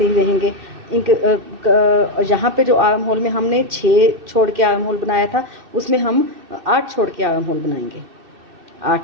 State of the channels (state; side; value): late; left; 2.6 ms